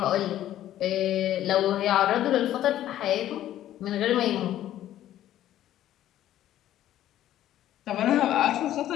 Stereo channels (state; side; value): quieter; right; 12.7 dB